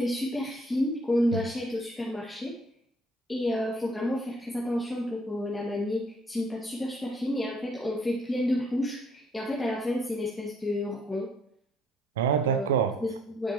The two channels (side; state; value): both; normal; correlation 0.64